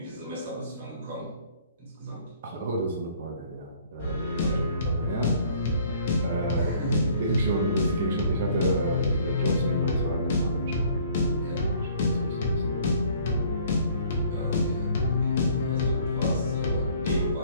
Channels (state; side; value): inverted; both; correlation -0.57